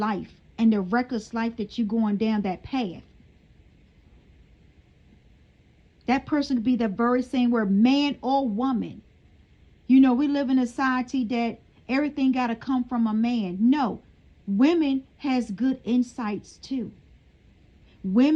and the reckless life that you're going down that path. That person could be the very same word, man or woman. You know, we live in a society that everything got to come from a man. No, women has good insights too.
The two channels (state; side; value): identical; both; correlation 1.00